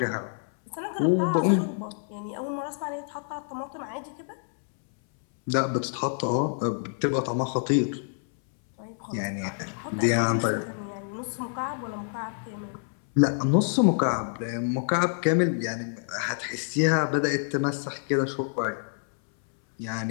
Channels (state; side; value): silent; right; 60 dB below the other